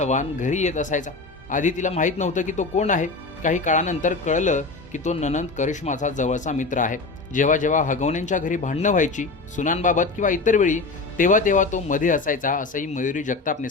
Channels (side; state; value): right; quieter; 3.8 dB